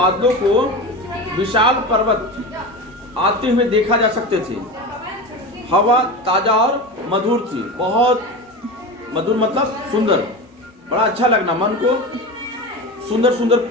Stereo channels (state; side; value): normal; both; correlation 0.26